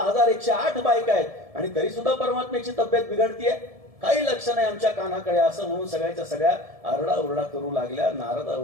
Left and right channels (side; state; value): left; late; 1.7 ms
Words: बायका आहेत आणि तरी सुद्धा परमात्म्याची तब्येत बिघडतीये, काही लक्ष नाही आमच्या कानाकडे. असं म्हणून सगळ्याच्या सगळ्या आरडाओरडा करू लागल्या,